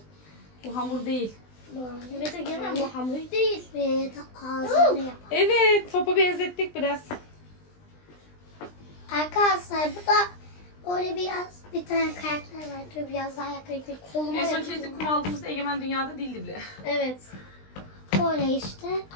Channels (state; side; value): late; right; 20 ms